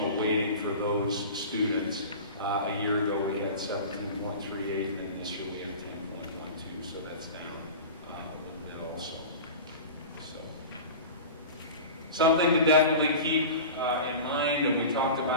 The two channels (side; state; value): both; inverted; correlation -0.33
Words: weighting for those students. A year ago we had 17.38, and then this year we have 10.12, so that's down a little bit also. So something to definitely keep in mind, and we talked